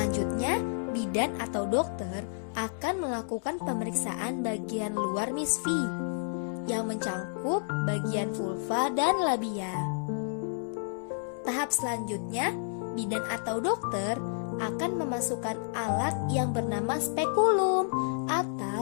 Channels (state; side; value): silent; right; digital silence